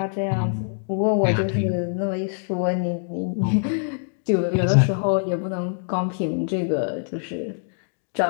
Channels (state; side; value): silent; right; digital silence